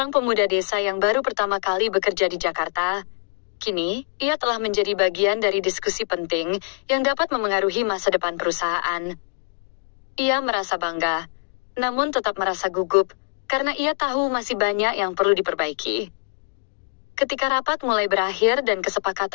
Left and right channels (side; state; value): right; silent; digital silence